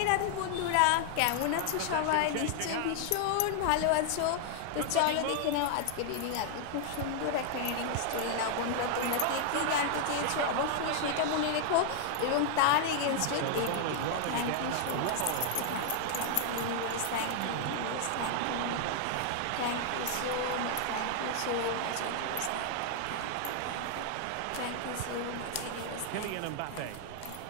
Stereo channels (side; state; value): both; different; correlation 0.00